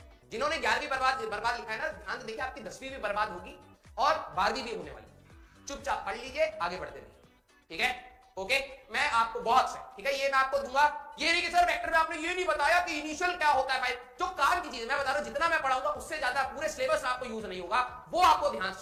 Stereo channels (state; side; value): identical; both; correlation 1.00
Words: जिन्होंने 11वीं बर्बाद लिखा है ना, ध्यान से देखिए, आपकी 10वीं भी बर्बाद होगी और 12वीं भी होने वाली। चुपचाप पढ़ लीजिए, आगे बढ़ते रहिए। ठीक है, ओके, मैं आपको बहुत से, ठीक है, ये मैं आपको दूंगा। ये नहीं कि सर वेक्टर में आपने ये नहीं बताया कि इनिशियल क्या होता है। भाई जो काम की चीज मैं बता रहा हूं, जितना मैं पढ़ाऊंगा उससे ज्यादा पूरे सिलेबस में आपको यूज नहीं होगा, वो आपको ध्यान से